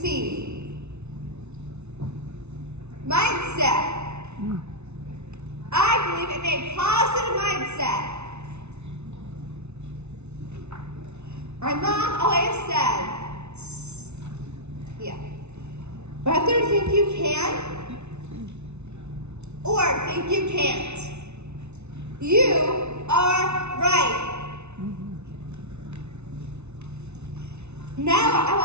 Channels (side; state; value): left; late; 0.81 ms